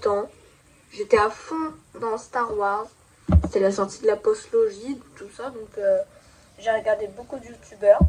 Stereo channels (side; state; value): both; identical; correlation 1.00